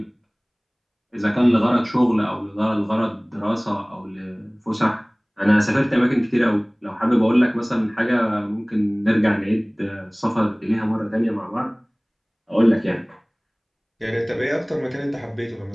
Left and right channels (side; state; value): both; identical; correlation 1.00